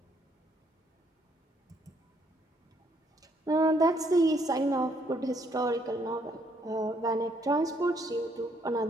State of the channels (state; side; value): normal; both; correlation 0.69